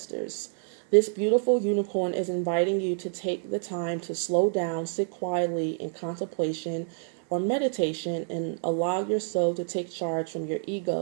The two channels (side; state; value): left; silent; 59 dB below the other